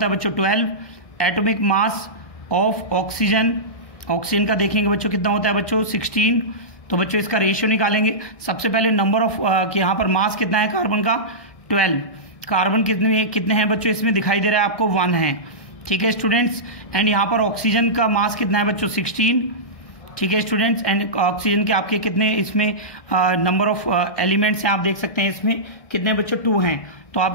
है बच्चों 12। Atomic mass of oxygen, oxygen का देखेंगे बच्चों कितना होता है बच्चों 16। तो बच्चों इसका रेशियो निकालेंगे। सबसे पहले नंबर ऑफ यहाँ पर मास कितना है कार्बन का 12। कार्बन कितने हैं बच्चों इसमें दिखाई दे रहा है आपको 1 है। ठीक है स्टूडेंट्स, एंड यहाँ पर ऑक्सीजन का मास कितना है बच्चों 16। ठीक है स्टूडेंट्स, एंड ऑक्सीजन के आपके कितने इसमें नंबर ऑफ एलिमेंट्स हैं आप देख सकते हैं इसमें कितने बच्चों 2 हैं। तो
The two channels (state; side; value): late; right; 1.6 ms